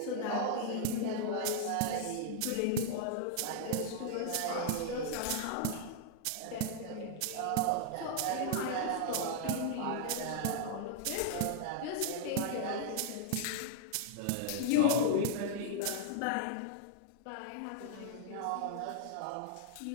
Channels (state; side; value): different; both; correlation -0.01